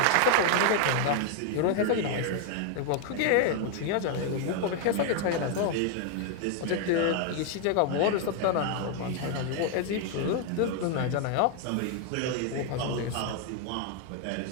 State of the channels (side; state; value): both; different; correlation 0.00